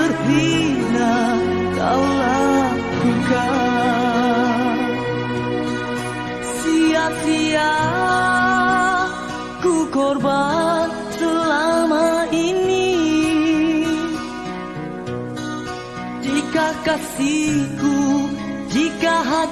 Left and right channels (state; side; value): identical; both; correlation 1.00